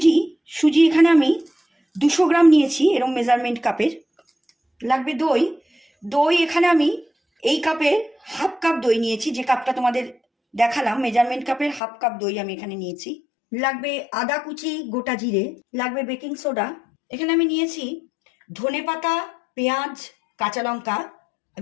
সুজি এখানে আমি 200 গ্রাম নিয়েছি, এরকম মেজারমেন্ট কাপের। লাগবে দই। দই এখানে আমি এই কাপের হাফ কাপ দই নিয়েছি, যে কাপটা তোমাদের দেখালাম মেজারমেন্ট কাপের হাফ কাপ দই আমি এখানে নিয়েছি। লাগবে আদা কুচি, গোটা জিরে। লাগবে বেকিং সোডা। এখানে আমি নিয়েছি ধনেপাতা, পেঁয়াজ, কাঁচা লঙ্কা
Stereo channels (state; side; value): drops out; right; at 11.8 s